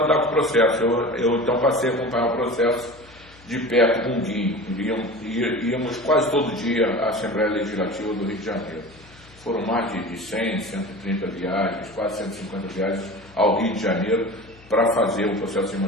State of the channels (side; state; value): left; noise; hum, 24 dB below the sound